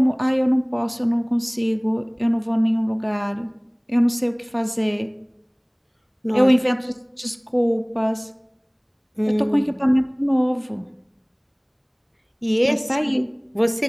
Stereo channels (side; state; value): both; identical; correlation 1.00